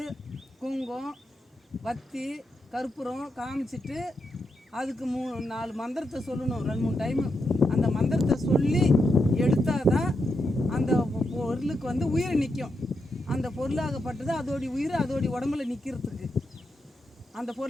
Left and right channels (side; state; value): both; normal; correlation 0.84